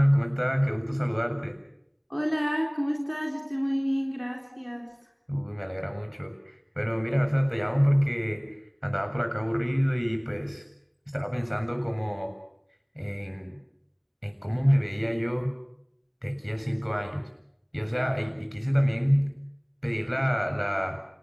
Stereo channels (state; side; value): identical; both; correlation 1.00